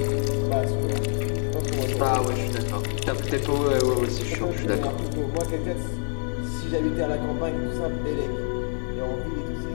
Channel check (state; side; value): silent; right; 58 dB below the other